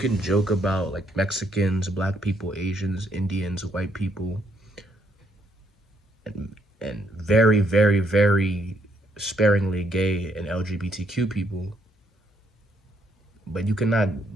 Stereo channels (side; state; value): both; normal; correlation 0.72